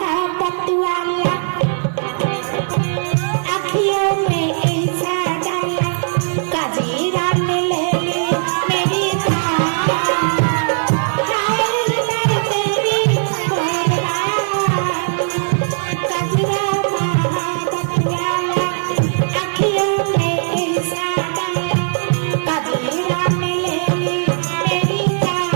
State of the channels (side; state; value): left; silent; 67 dB below the other